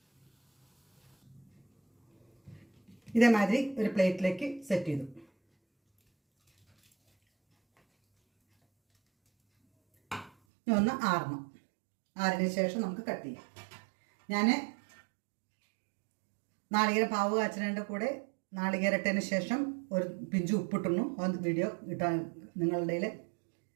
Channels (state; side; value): drops out; left; at 10.3 s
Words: ഇതേമാതിരി ഒരു പ്ലേറ്റിലേക്ക് സെറ്റ് ചെയ്തു. ഒന്ന് ആറിന് ശേഷം നമുക്ക് കട്ട് ചെയ്യാം. ഞാൻ നാളികേരം പാവ് കാച്ചതിൻ്റെ കൂടെ നാളികേരട്ടതിന് ശേഷം ഒരു പിഞ്ച് ഉപ്പിട്ടുന്നു. അത് വീഡിയോ ഇട്ടാൻ നിങ്ങളുടെ കയ്യിൽ